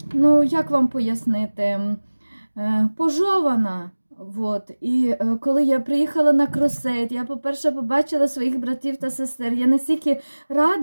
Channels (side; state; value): both; inverted; correlation -1.00